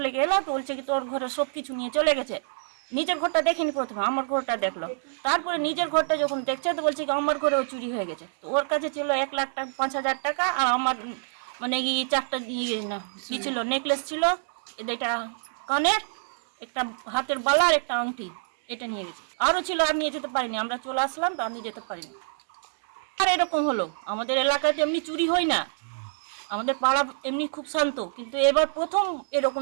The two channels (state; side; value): silent; left; digital silence